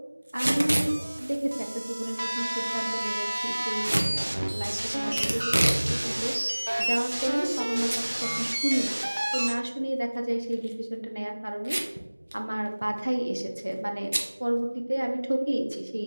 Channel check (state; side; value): inverted; both; correlation -1.00